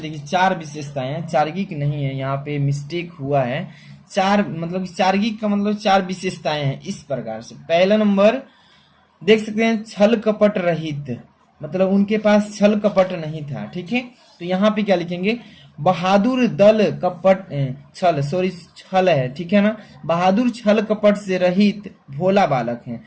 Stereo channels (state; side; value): identical; both; correlation 1.00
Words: 4 विशेषताएं हैं, चार्गिक नहीं है, यहाँ पे मिस्टेक हुआ है। 4 मतलब चार्गिक का मतलब 4 विशेषताएं हैं इस प्रकार से। पहला नंबर देख सकते हैं, छल कपट रहित, मतलब उनके पास छल कपट नहीं था। ठीक है, तो यहाँ पे क्या लिखेंगे, बहादुर दल कपट छल है। ठीक है ना, बहादुर छल कपट से रहित भोला बालक है,